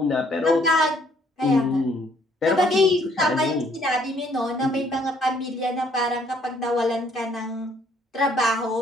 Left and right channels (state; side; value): normal; both; correlation 0.64